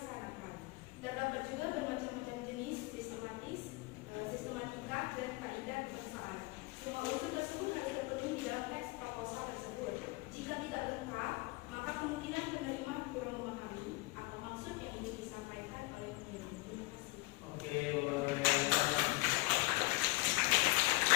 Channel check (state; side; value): quieter; right; 23.7 dB